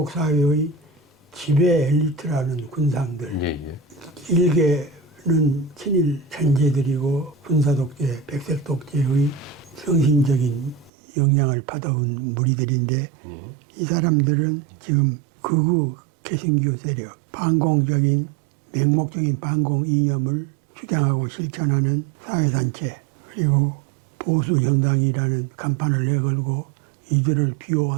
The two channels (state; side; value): drops out; left; at 10.9 s